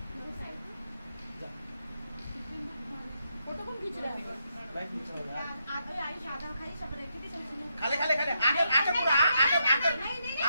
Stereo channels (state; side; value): inverted; both; correlation -0.81